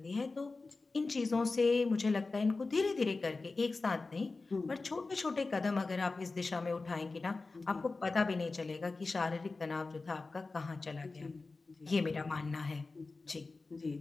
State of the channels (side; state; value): right; quieter; 3.7 dB